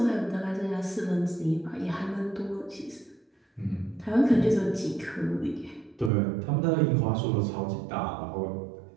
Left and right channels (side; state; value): left; drops out; at 6.1 s